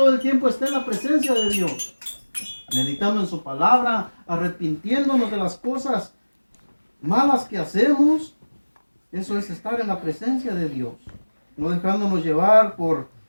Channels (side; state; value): both; inverted; correlation -1.00